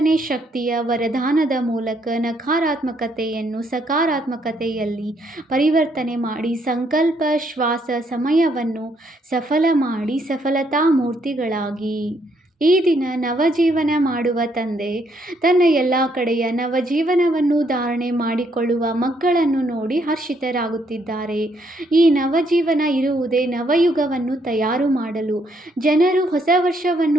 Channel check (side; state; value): both; normal; correlation 0.72